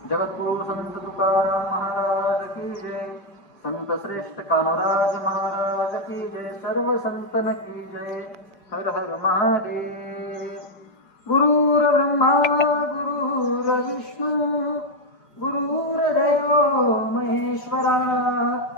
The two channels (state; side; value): late; right; 5.1 ms